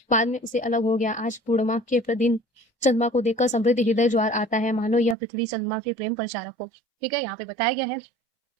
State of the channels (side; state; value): left; drops out; at 5.2 s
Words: बाद में उसे अलग हो गया। आज पूर्णिमा के दिन चंद्रमा को देखकर समृद्ध हृदय ज्वार आता है, मानो यह पृथ्वी चंद्रमा के प्रेम प्रचारक हो। ठीक है, यहाँ पे बताया गया है